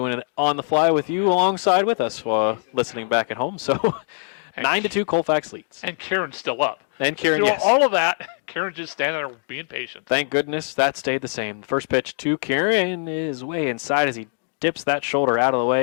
it on the fly with you alongside with us while listening back at home. So 9-2 Colfax leads. And Kieran's still up. And Kieran, Through yes. all of that, Kieran's just standing there being patient. Thank goodness that stayed the same. First pitch to Kieran is way inside as he dips that shoulder out of the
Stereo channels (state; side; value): silent; right; 57 dB below the other